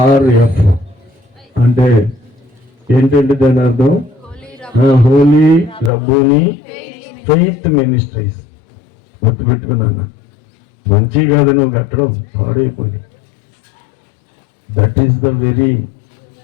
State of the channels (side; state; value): right; drops out; at 5.9 s